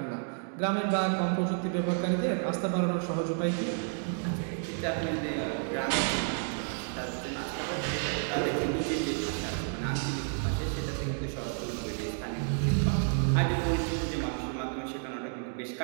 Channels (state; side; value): silent; left; 57 dB below the other